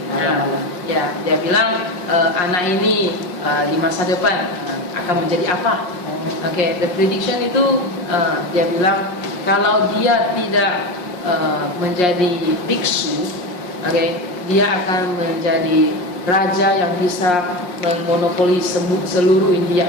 ya dia bilang anak ini di masa depan akan menjadi apa? The prediction itu dia bilang kalau dia tidak menjadi biksu, dia akan menjadi raja yang bisa memonopoli seluruh India,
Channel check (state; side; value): late; right; 5.6 ms